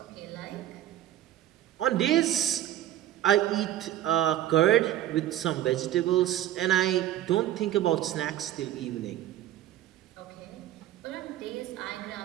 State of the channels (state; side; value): quieter; left; 12.9 dB